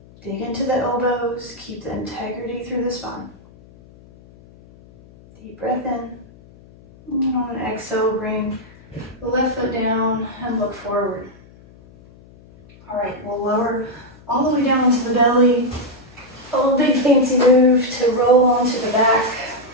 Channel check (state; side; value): noise; left; hum, 24 dB below the sound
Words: Dig into the elbows. Keep the integrity through the spine. Deep breath in. And on an exhale, bring the left foot down and look forward. All right, we'll lower all the way down into the belly. A little big fancy move to roll onto the back.